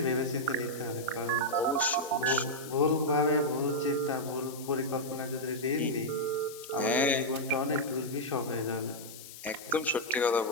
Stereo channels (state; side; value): noise; left; hiss, 15 dB below the sound